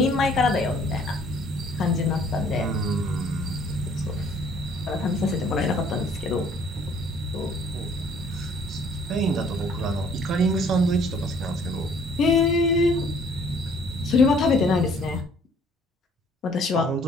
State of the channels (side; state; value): both; normal; correlation 0.58